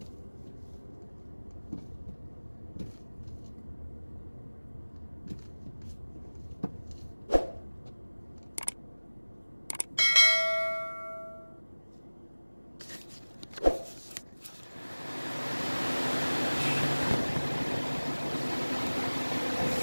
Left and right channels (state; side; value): inverted; both; correlation -1.00